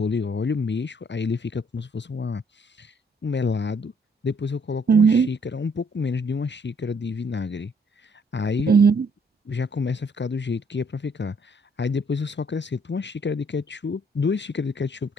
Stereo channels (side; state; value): both; normal; correlation 0.66